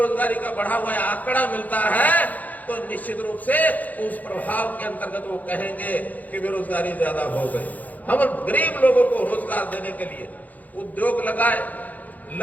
का बढ़ा हुआ आंकड़ा मिलता है, तो निश्चित रूप से उस प्रभाव के अंतर्गत वो कहेंगे कि बेरोजगारी ज्यादा हो गई। हम गरीब लोगों को रोजगार देने के लिए उद्योग लगाए,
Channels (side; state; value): right; late; 0.080 ms